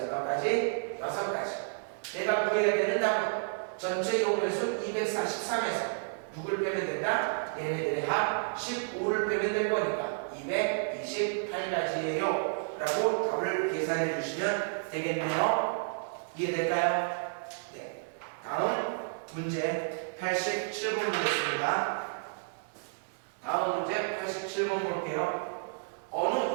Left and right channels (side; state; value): left; silent; digital silence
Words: 몇 가지? 6가지. 내가 구해야 되는 답은 전체 경우의 수 243에서 누굴 빼면 된다? 얘네들의 합 15를 빼면 될 거니까 228가지예요 라고 답을 계산해 주시면 되겠네요. 이해될까요? 네. 다음 문제 87번 보겠습니다. 다음 문제 87번 볼게요. 어느